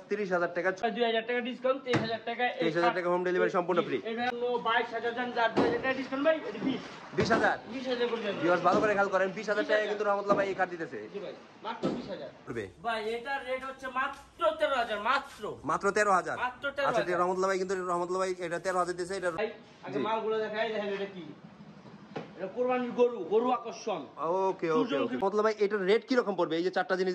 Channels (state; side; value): identical; both; correlation 1.00